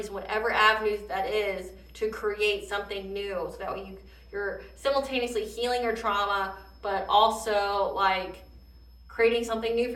whatever avenues that is, to create something new. So that way you're simultaneously healing your trauma, but also like creating something new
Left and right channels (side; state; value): both; identical; correlation 1.00